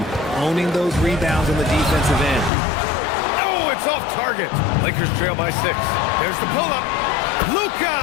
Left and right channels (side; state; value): right; drops out; at 2.5 s